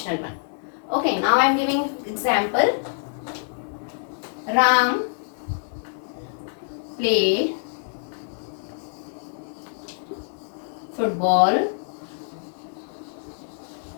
one. Okay. Now I am giving example. Ram played football.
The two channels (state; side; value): silent; right; 61 dB below the other